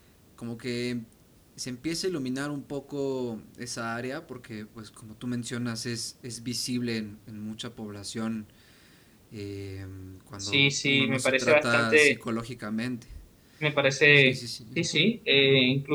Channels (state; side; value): identical; both; correlation 1.00